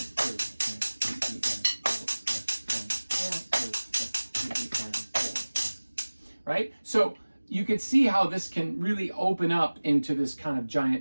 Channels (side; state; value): both; inverted; correlation -1.00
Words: and 4 and 4. Right? So you can see how this can really open up into this kind of